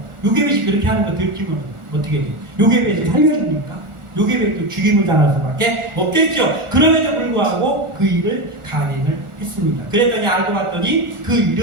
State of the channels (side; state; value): left; late; 1.4 ms